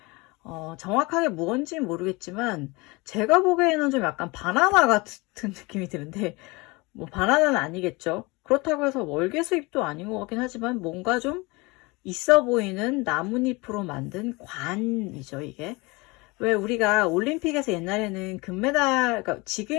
정확하게 무언지는 모르겠지만 제가 보기에는 좀 약간 바나나 같은 느낌이 드는데, 뭐 바나나는 아니겠죠. 그렇다고 해서 월계 수잎도 아닌 것 같긴 하지만 뭔가 좀 있어 보이는 나뭇잎으로 만든 관이죠, 이게. 왜 우리가 올림픽에서 옛날에는 금메달, 그러니까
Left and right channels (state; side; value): quieter; right; 25.2 dB